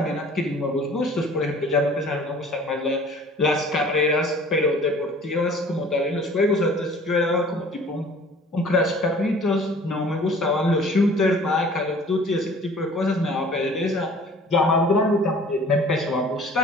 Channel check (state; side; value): normal; both; correlation 0.49